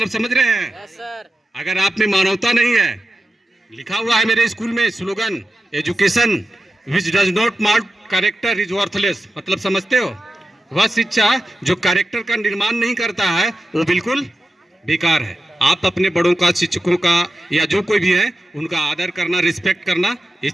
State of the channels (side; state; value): both; normal; correlation 0.92